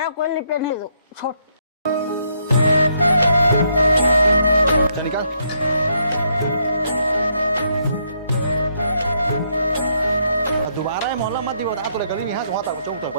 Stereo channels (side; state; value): both; inverted; correlation -0.74